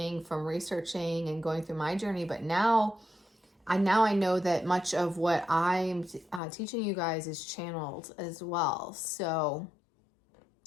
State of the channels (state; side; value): drops out; right; at 6.4 s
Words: from researching and going through my journey, but now I know that much of what I'm teaching you guys is channeled as well. So,